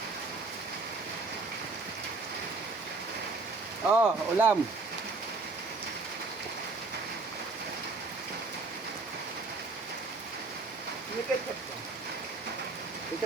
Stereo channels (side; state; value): left; quieter; 3.7 dB